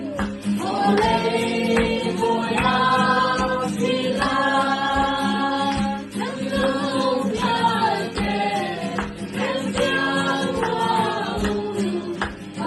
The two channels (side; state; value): both; identical; correlation 1.00